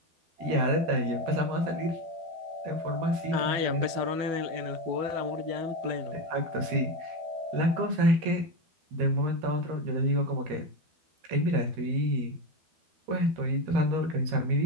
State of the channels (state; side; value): late; left; 12 ms